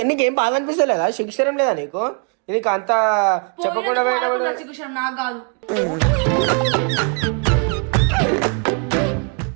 నీకేం బాధ అనిపిస్తలేదా? శిక్షరం లేదా నీకు? నీకు అంత చెప్పకుండా నాకు కాదు.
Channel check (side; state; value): left; quieter; 37.7 dB